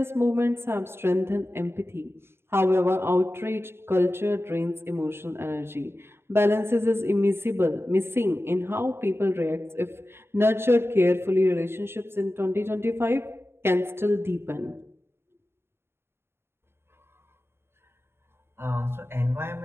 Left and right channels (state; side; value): late; left; 0.12 ms